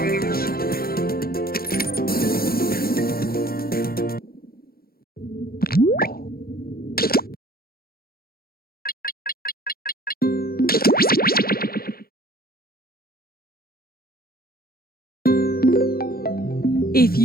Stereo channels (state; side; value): late; right; 0.44 ms